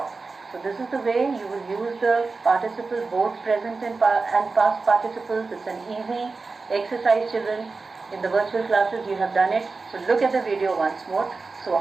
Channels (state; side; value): quieter; left; 4.0 dB